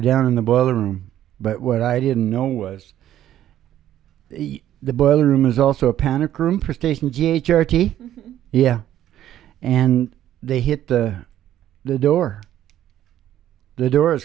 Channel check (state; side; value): quieter; left; 12.0 dB